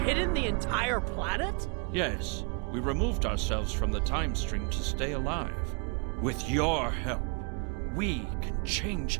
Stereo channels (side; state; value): left; quieter; 34.9 dB